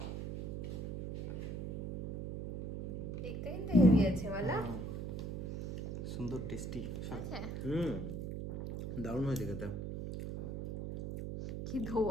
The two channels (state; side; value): noise; right; hum, 4 dB below the sound